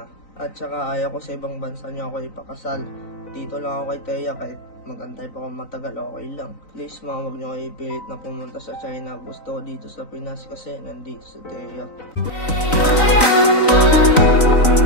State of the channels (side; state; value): right; late; 3.9 ms